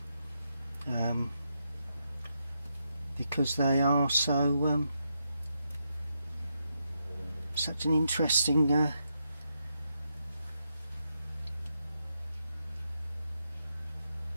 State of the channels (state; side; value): inverted; both; correlation -0.82